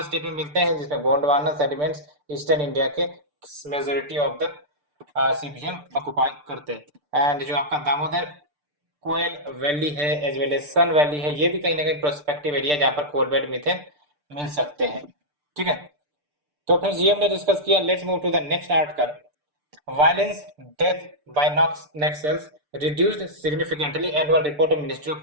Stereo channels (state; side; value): late; left; 6.8 ms